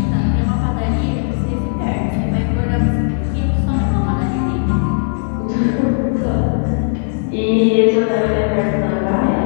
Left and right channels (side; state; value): right; silent; 68 dB below the other